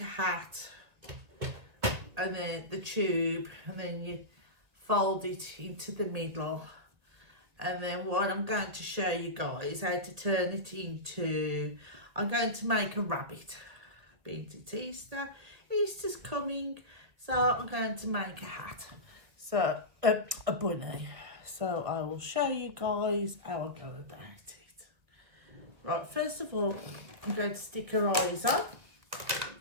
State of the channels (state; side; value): late; left; 2.1 ms